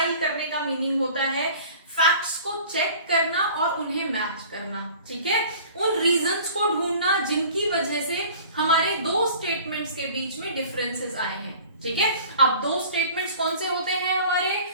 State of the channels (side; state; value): both; inverted; correlation -0.45